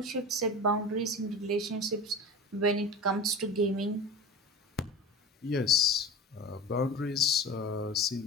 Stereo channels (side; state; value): both; normal; correlation 0.32